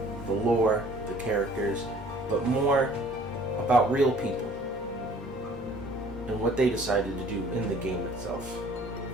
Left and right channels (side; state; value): both; normal; correlation 0.54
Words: the lore, the characters, but more about real people and what they decided to do in the game itself.